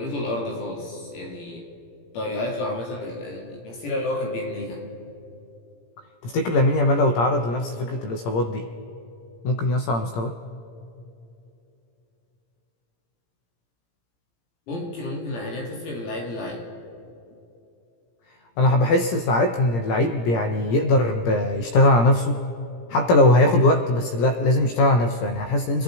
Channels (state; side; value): late; right; 17 ms